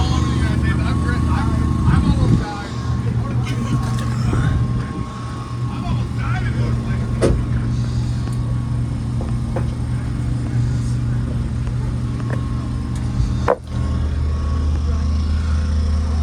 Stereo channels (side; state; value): both; identical; correlation 1.00